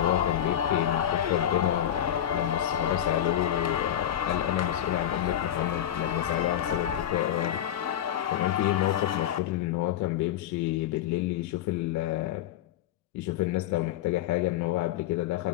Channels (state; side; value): quieter; right; 11.2 dB